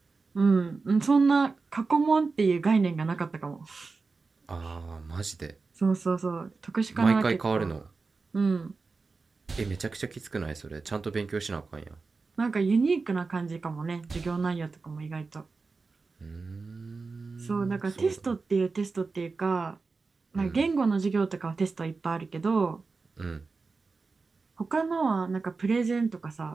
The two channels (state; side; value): quieter; left; 4.2 dB